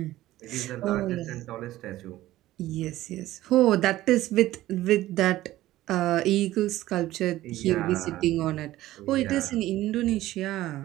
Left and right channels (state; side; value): quieter; left; 15.5 dB